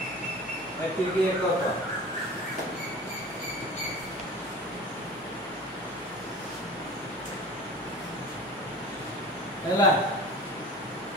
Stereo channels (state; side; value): normal; both; correlation 0.37